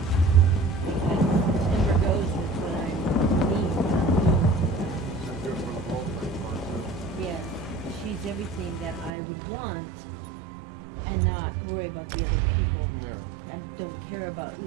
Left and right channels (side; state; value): left; drops out; at 9.1 s